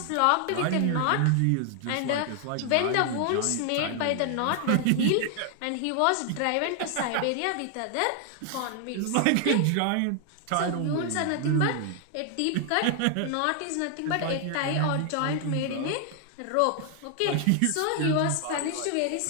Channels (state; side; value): different; both; correlation 0.00